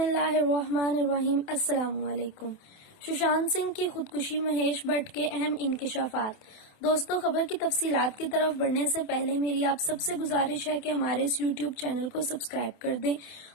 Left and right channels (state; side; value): late; right; 28 ms